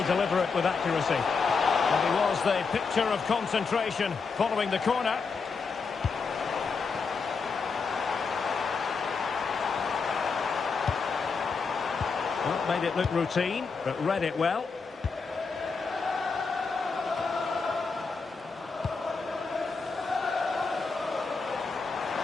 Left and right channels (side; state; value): right; quieter; 4.9 dB